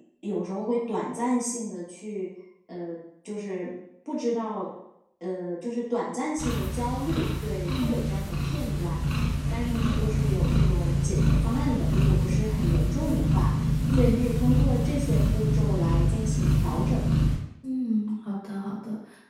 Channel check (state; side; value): identical; both; correlation 1.00